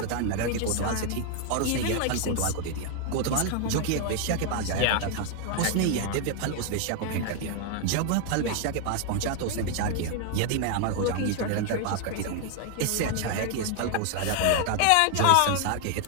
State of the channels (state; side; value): different; both; correlation 0.00